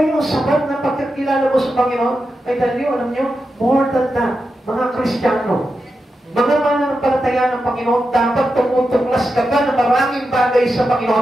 yung sapat na pagkakilala mo sa Panginoon? I tell you, alam nyo, more than that, mga Kristiyano, mga mananampalataya ng Panginoon, dapat tumutuklas ka pa ng maraming bagay sa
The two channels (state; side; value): normal; both; correlation 0.89